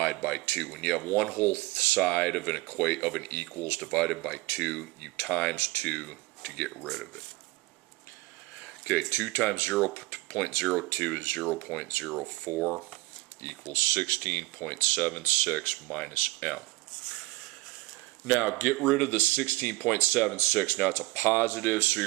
by 2. When you have one whole side of an equals divided by 2, you times 2 to get rid of it. Okay, 2 times 0.02 is 0.04 equals 16.76 minus M. Now, get rid of the 16.76. Now, it's a positive, so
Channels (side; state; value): left; quieter; 21.8 dB